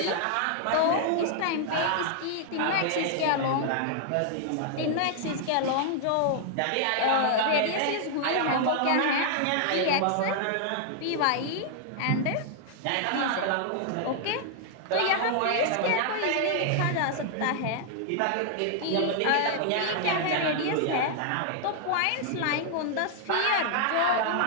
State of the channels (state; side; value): different; both; correlation 0.00